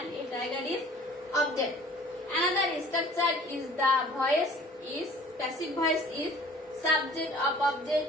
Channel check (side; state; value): both; normal; correlation 0.50